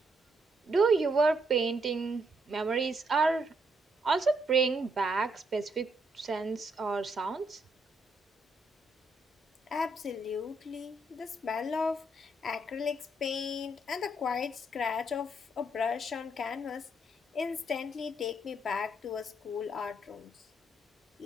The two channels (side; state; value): both; normal; correlation 0.74